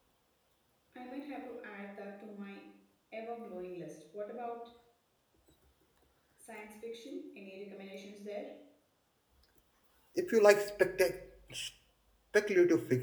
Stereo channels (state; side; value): identical; both; correlation 1.00